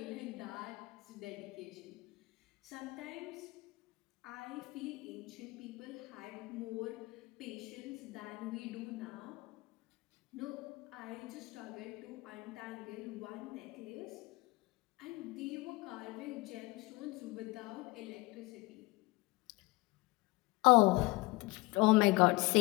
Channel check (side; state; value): right; quieter; 22.4 dB